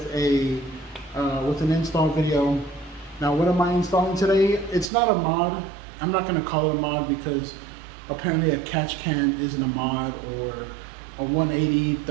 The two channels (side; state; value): left; drops out; at 4.9 s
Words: an install video. Now, what am I installing today? It's not a mod. I'm not going to call it a mod because apparently a catch can isn't a mod, or a 180